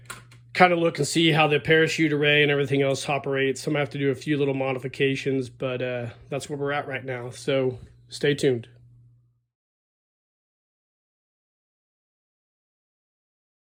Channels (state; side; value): identical; both; correlation 1.00